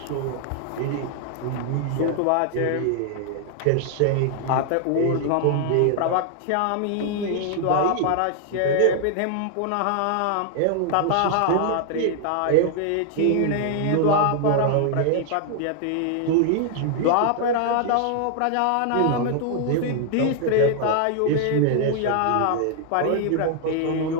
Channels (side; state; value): both; different; correlation 0.00